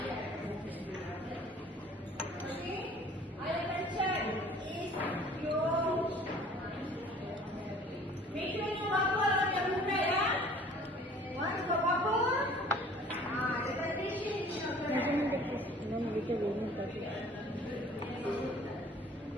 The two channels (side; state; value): both; normal; correlation 0.51